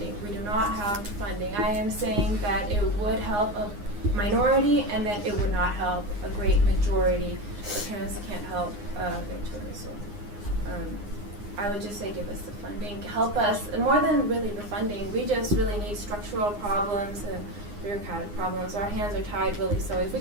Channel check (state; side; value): late; left; 9.7 ms